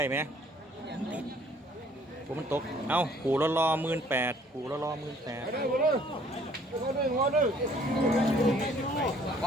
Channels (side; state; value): both; normal; correlation 0.59